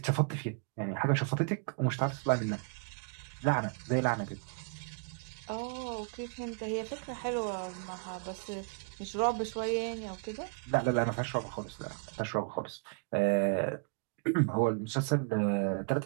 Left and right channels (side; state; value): left; quieter; 37.2 dB